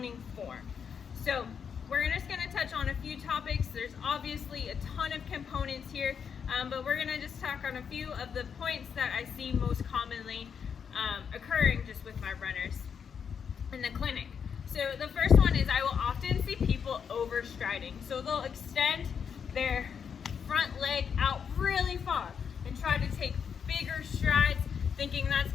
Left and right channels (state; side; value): quieter; right; 7.0 dB